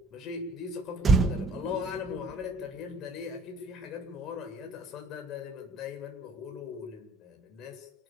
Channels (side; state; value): both; normal; correlation 0.55